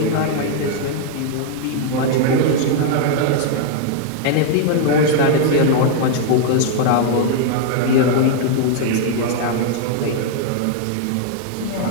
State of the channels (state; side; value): different; both; correlation -0.01